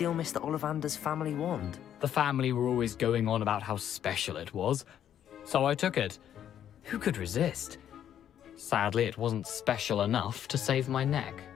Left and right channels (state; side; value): quieter; right; 10.1 dB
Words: Mr. Ollivander's family wand? The family were always going on about how special it was, so I took it. Who could resist? Sadly, it wasn't special enough to save my neck.